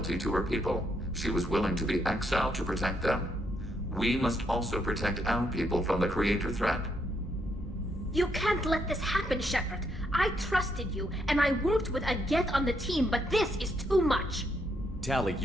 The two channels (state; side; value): normal; both; correlation 0.76